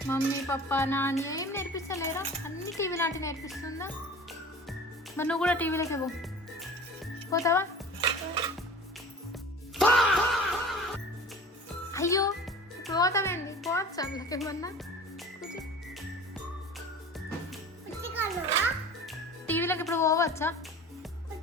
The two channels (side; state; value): both; normal; correlation 0.40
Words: మమ్మీ పప్ప నాన్న ఏం నేర్పిస్తలేరా? అన్ని టీవీ లాంటి నేర్పిస్తుందా? మరి నువ్వు కూడా టీవీలోకి పోతావా? అయ్యో, ఇప్పుడు పోతావేంది? పోవచ్చు అందులోకి ఏమన్నా. టీవీలోకి ఇప్పుడు పోవచ్చా?